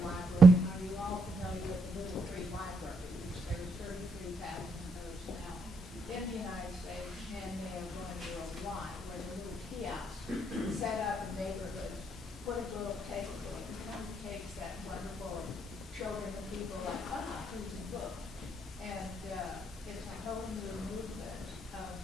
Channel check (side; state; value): both; normal; correlation 0.77